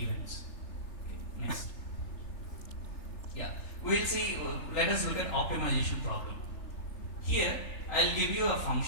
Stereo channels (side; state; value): right; late; 3.4 ms